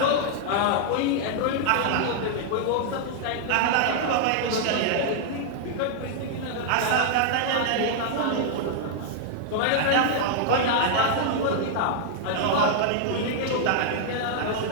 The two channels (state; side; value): different; both; correlation 0.00